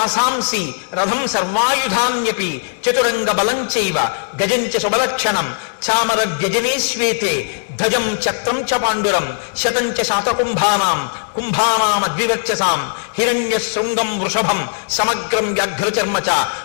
రథం సర్వాయుధాన్యపి చతురంగ బలంచైవ గజంచ శుభలక్షణం చామర వ్యజనే శ్వేతే ధ్వజం చక్రం చ పాండురం శతంచ శాతకుంభానాం కుంభానామద్వివర్చసాం హిరణ్య శృంగం వృషభం సమగ్రం వ్యాఘ్రచర్మ చ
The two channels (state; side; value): silent; right; 67 dB below the other